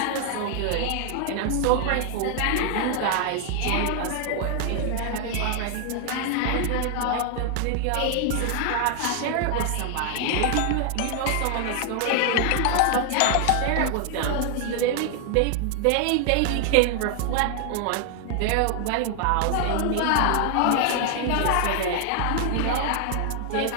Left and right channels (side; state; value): both; different; correlation 0.00